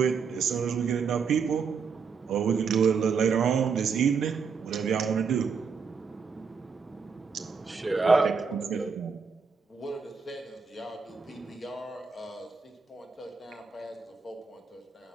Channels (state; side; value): quieter; left; 5.6 dB